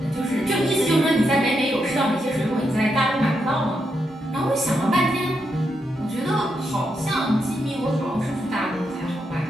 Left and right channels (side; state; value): both; normal; correlation 0.82